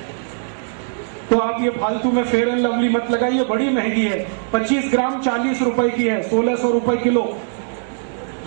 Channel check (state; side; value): silent; left; digital silence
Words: तो आप ये फालतू में फेयर एंड लवली मत लगाइए, बड़ी महंगी है। 25 ग्राम 40 रुपए की है, 1600 रुपए किलो।